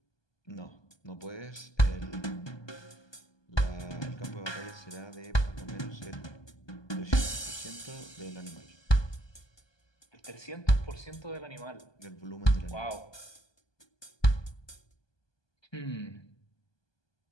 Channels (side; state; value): right; late; 1.2 ms